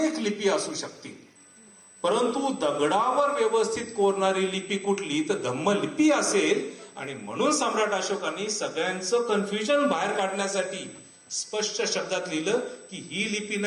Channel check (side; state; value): both; identical; correlation 1.00